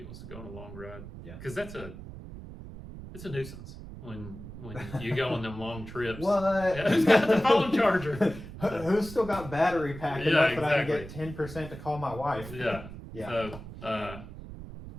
wants to go on a long ride. Yeah. Because it's a nuisance when you go on them long trips. What? Yeah, who's got the phone charger? Who's still got battery pack enough that I can get 10% to call my wife? Yeah. Yeah. So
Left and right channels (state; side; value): noise; right; rumble, 13 dB below the sound